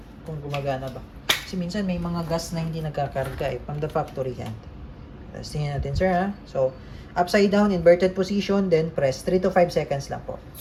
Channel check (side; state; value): both; identical; correlation 1.00